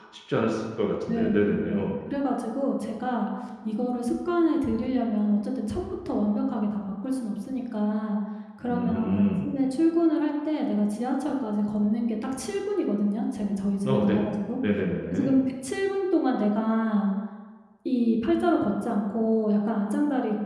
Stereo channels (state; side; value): identical; both; correlation 1.00